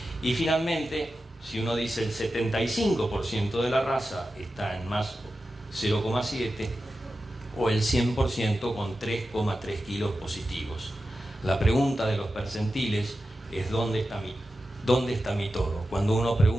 Y finalmente, si uno dice el 75% de la raza está en más 0,7, o el 100% con 3,3 kilos positivos. La pregunta de los percentiles es ¿dónde está mi toro? Cuando uno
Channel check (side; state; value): both; normal; correlation 0.92